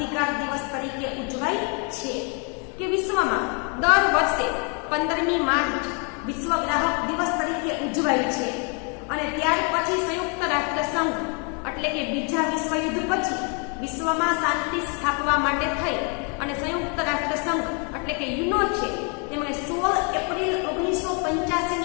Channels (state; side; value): quieter; right; 36.4 dB